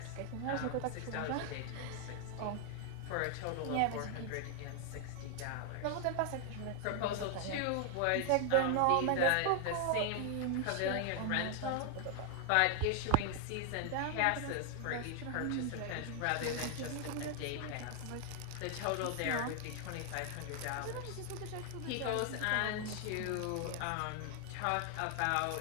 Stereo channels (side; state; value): both; different; correlation 0.00